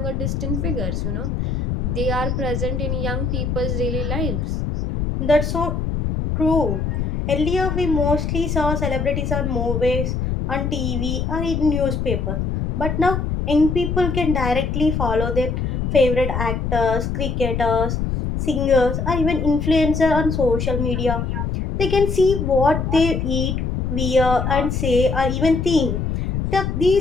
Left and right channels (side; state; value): left; noise; rumble, 1 dB below the sound